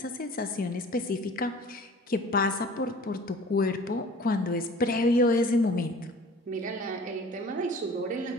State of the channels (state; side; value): normal; both; correlation 0.46